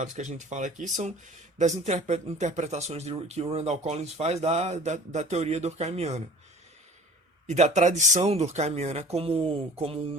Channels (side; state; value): both; normal; correlation 0.46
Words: que a gente fala aqui são das interpretações que o Randall Collins faz da teoria durkheimiana. e da tradição durkheimiana como